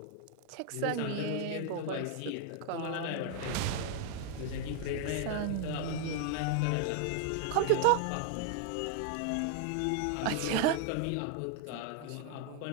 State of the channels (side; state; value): both; different; correlation 0.00